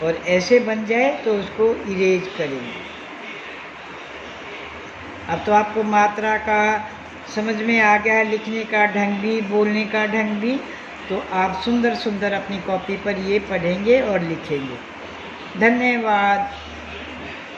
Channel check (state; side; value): identical; both; correlation 1.00